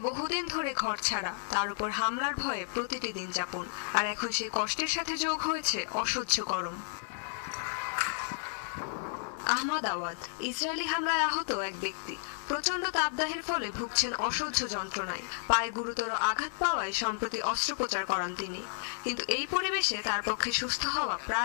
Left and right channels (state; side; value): silent; right; digital silence